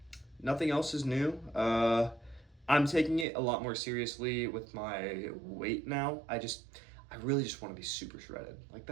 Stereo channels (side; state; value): left; drops out; at 3.2 s